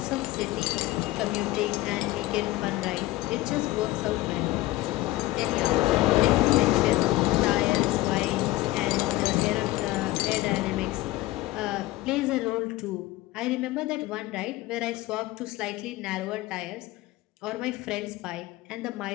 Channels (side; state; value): right; quieter; 17.9 dB